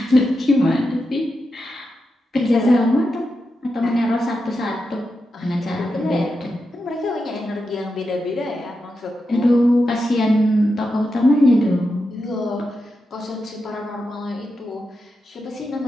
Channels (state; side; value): normal; both; correlation 0.88